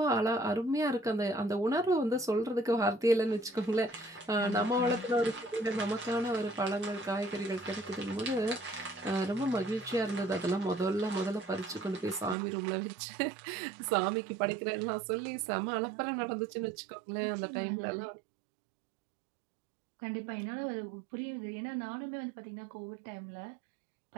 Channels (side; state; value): left; drops out; at 12.4 s